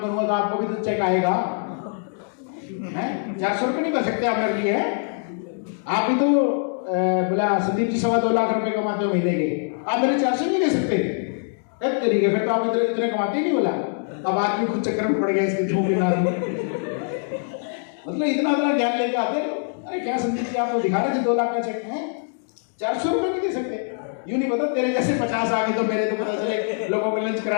तो आपको भी तो चेक आएगा, हैं? 400 रुपये नहीं कर सकते आप मेरे लिए? आप भी तो बोला संदीप जी 2.25 लाख रुपए कमाते हो महीने के, आप मेरे 400 नहीं दे सकते? कब करिए? फिर तो आप इतने कमाते नहीं। बोला अब आदमी खुद चक्कर में पड़ गया इसके झूठ ना। मतलब इतना ज्ञान लेके आते, अरे क्या संदीप जी आप तो दिखा रहे थे 2 लाख का चेक है, 400 रुपये नहीं दे सकते? यूं नहीं पता तेरे जैसे 50 आ गए तो मेरे तो पता चले लोगों को लंच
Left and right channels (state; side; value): silent; right; 63 dB below the other